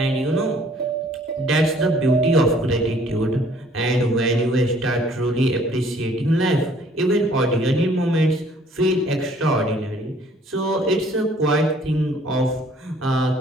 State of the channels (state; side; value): normal; both; correlation 0.58